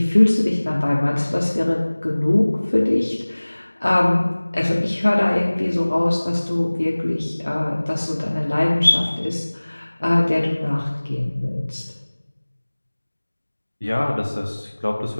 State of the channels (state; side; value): inverted; both; correlation -1.00